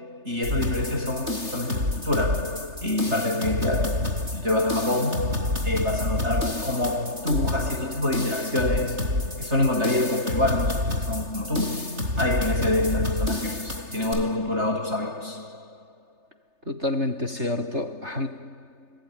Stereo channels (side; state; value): left; late; 3.3 ms